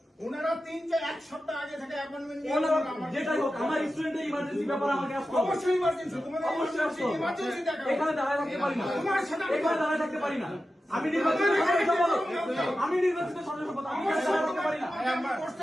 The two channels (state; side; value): normal; both; correlation 0.92